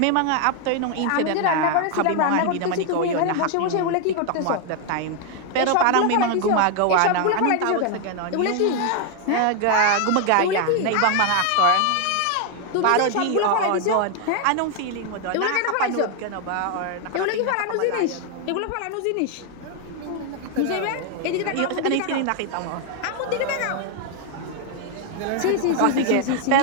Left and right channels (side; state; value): both; different; correlation 0.01